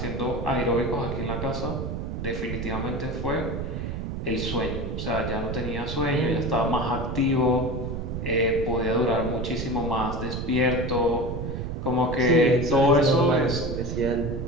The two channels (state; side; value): noise; right; rumble, 4 dB below the sound